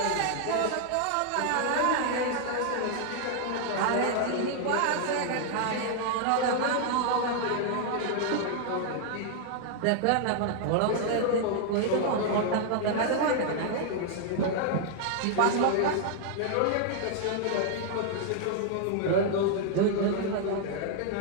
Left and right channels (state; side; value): different; both; correlation 0.00